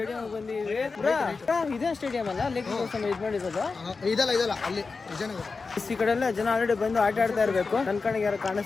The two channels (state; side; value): quieter; right; 4.4 dB